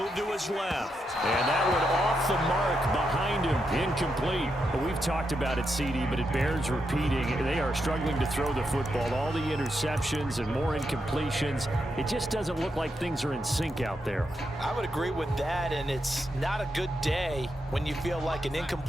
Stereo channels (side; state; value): both; normal; correlation 0.83